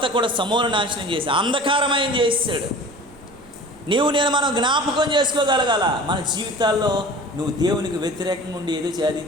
కూడా సమూల నాశనం చేసి అంధకారమయం చేసాడు. నేను మనం జ్ఞాపకం చేసుకోగలగాల మన జీవితాల్లో నువ్వు దేవునికి వ్యతిరేకంగా ఉండి ఏదో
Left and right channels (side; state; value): right; noise; rumble, 25 dB below the sound